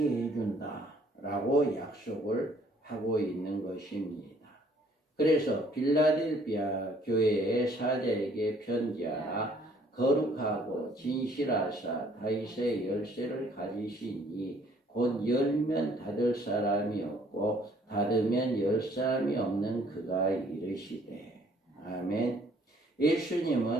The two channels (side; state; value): both; normal; correlation 0.61